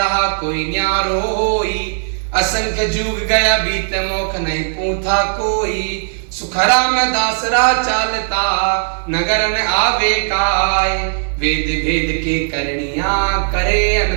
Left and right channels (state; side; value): silent; left; digital silence